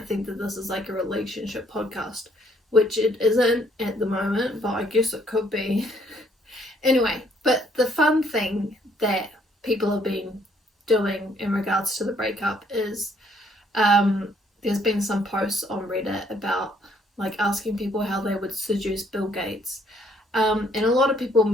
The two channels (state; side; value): normal; both; correlation 0.66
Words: think that this is like a relationship podcast, which it isn't at the moment, but I guess it could be. Anyway, but the fun thing that people have been doing in regards to the breakup is there's been some posts on Reddit about like asking people how they would seduce Bill Gates, and a lot of people